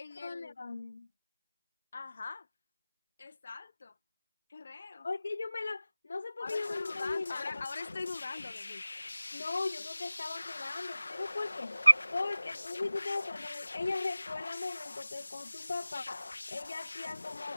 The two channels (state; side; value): inverted; both; correlation -0.97